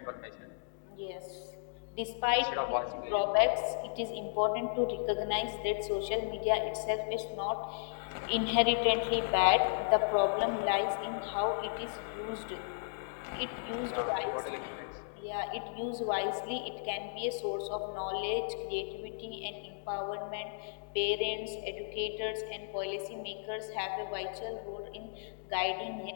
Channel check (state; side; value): silent; right; digital silence